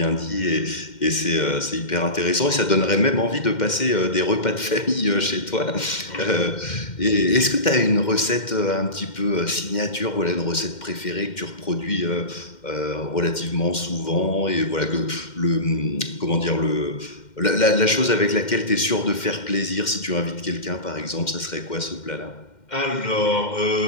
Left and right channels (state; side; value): late; right; 2.1 ms